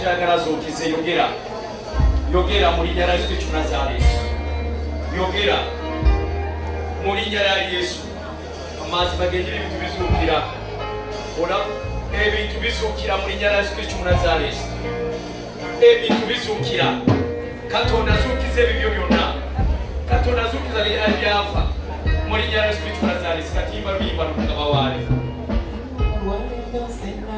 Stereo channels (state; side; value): identical; both; correlation 1.00